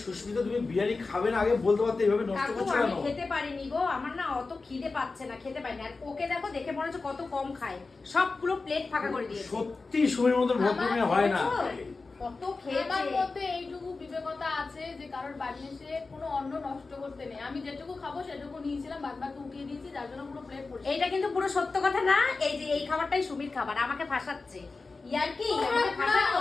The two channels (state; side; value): quieter; right; 3.9 dB